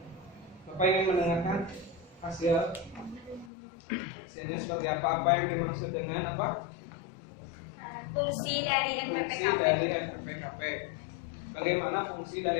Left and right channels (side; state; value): right; drops out; at 3.5 s